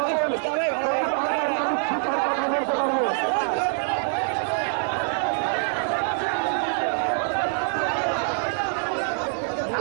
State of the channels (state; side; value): silent; left; 62 dB below the other